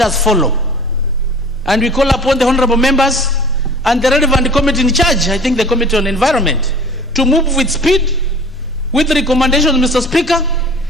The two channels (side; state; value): both; normal; correlation 0.45